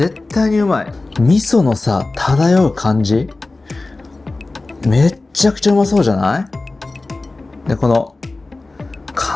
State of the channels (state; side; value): quieter; right; 3.2 dB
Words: 対にうまい。味噌のさ漂う感じめっちゃくちゃうまそうじゃない？でこの